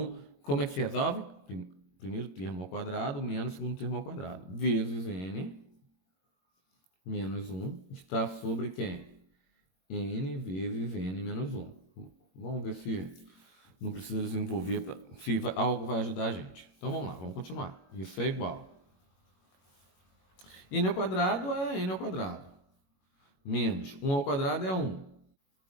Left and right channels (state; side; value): late; right; 22 ms